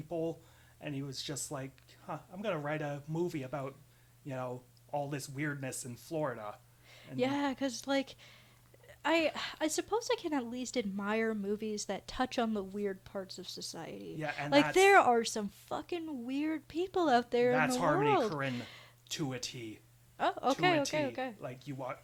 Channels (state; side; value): identical; both; correlation 1.00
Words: and he was just like, I'm gonna write a movie about, all this weirdness in Florida. And yeah, because like, I suppose I can at least admire movies that touch on the weird parts of society. Yeah, and like, there are some fucking weird people out there in the Harmony world. That's Harmony Korine to a T. Oh, okay.